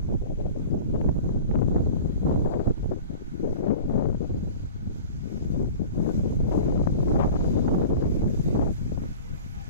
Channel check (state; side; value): inverted; both; correlation -0.39